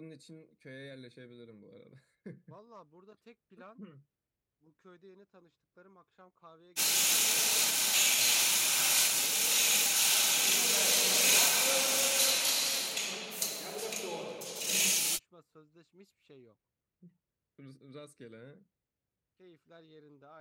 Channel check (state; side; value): identical; both; correlation 1.00